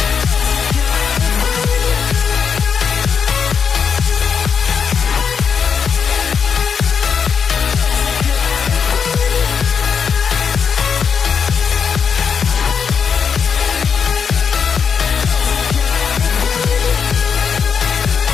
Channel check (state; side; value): quieter; right; 6.5 dB